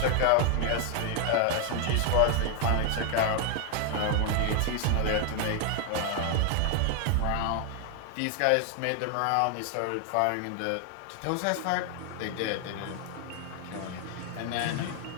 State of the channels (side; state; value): both; different; correlation 0.00